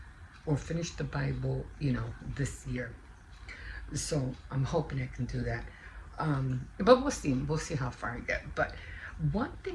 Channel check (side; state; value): both; identical; correlation 1.00